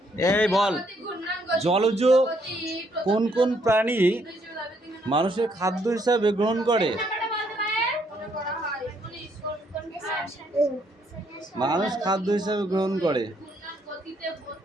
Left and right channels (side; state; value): both; normal; correlation 0.71